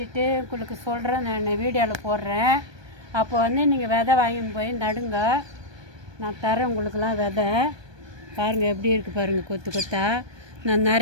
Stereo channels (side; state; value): left; late; 1.2 ms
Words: உங்களுக்கு சொல்கிறேன், நான் வீடியோவில் போடுறேன். அப்போ வந்து நீங்கள் விதை வாங்கின்னு போய் நடுங்க, நான் தரேன் உங்களுக்கெல்லாம் விதை. பாருங்கள் எப்படி இருக்குது பாருங்கள் கொத்து கொத்தா. நான்